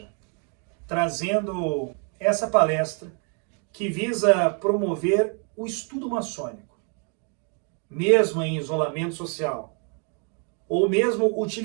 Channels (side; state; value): left; quieter; 39.0 dB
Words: trazendo essa palestra que visa promover o estudo maçônico, mesmo em isolamento social, ou mesmo